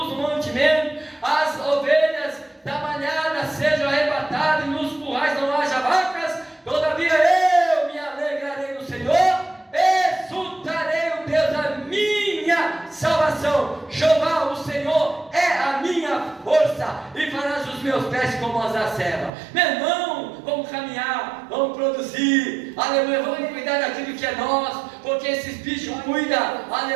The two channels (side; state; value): left; drops out; at 19.3 s